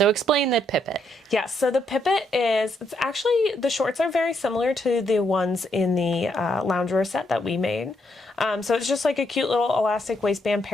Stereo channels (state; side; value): normal; both; correlation 0.75